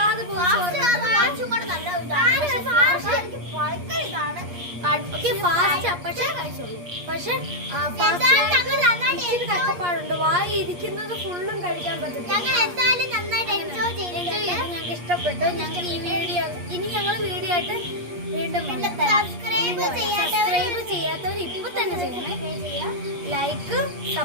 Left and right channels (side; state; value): left; late; 8.4 ms